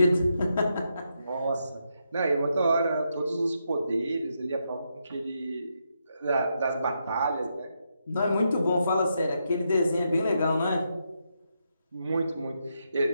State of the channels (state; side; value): inverted; both; correlation -0.82